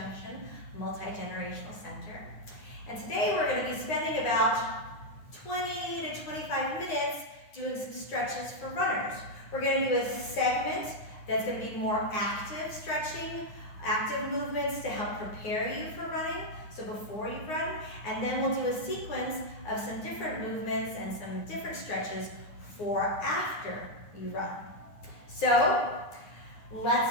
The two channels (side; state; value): right; late; 9.7 ms